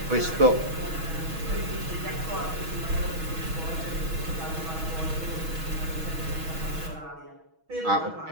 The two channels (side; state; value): left; late; 6.2 ms